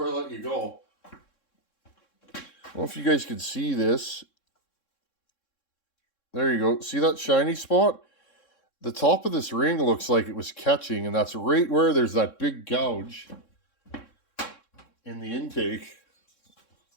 I let you go. I don't know if you guys can see this. There you go. See that shiny spot? The top of this ring looks like it was catching, and that's right where there's that big gouge in the intake.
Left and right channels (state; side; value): late; right; 3.6 ms